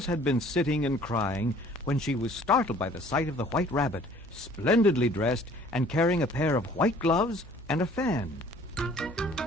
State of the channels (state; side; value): normal; both; correlation 0.53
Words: had been sitting and crying when she was startled by the sight of the white rabbit, splendidly dressed and carrying a pair of white gloves and a fan.